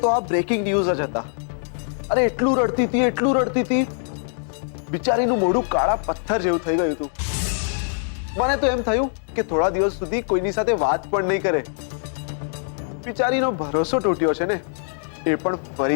તો આ બ્રેકિંગ ન્યૂઝ જ હતા. અરે એટલું રડતી હતી બિચારીનું મોઢું કાળા પથ્થર જેવું થઈ ગયું હતું. મને તો એમ થયું કે થોડા દિવસ સુધી કોઈની સાથે વાત પણ નહીં કરે. બિચારીનો ભરોસો તૂટ્યો છે ને, એ પણ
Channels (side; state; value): right; silent; 63 dB below the other